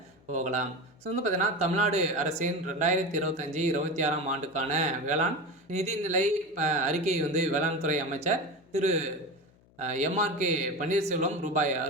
போகலாம். பார்த்தீங்கன்னா தமிழ்நாடு அரசின் 2025, 26ஆம் ஆண்டுக்கான வேளாண் நிதிநிலை அறிக்கை வேளாண் துறை அமைச்சர் திரு எம்ஆர்கே பன்னீர்செல்வம் ரூபாய்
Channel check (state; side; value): noise; left; hum, 30 dB below the sound